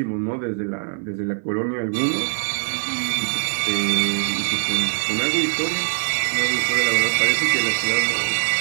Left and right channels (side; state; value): left; silent; 58 dB below the other